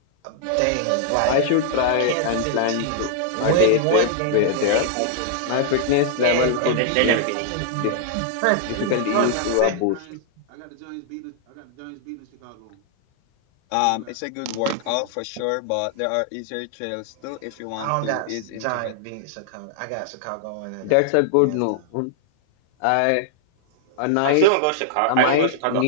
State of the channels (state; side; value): different; both; correlation 0.00